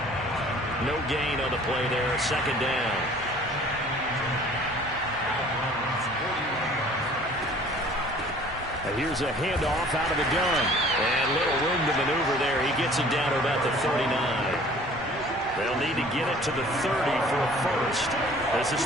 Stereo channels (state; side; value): normal; both; correlation 0.51